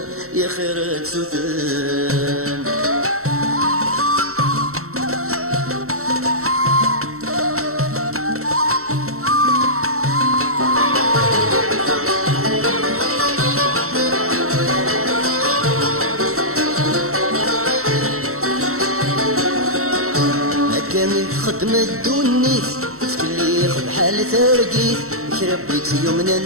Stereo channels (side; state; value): left; late; 0.63 ms